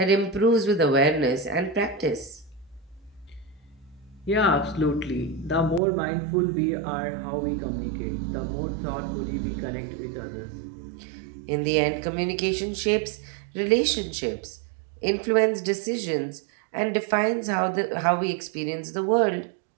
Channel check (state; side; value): drops out; left; at 5.8 s